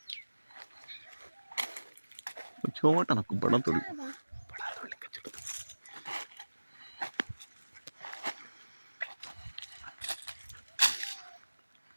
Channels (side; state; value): both; inverted; correlation -1.00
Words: छोटा ना बड़ा थोड़ी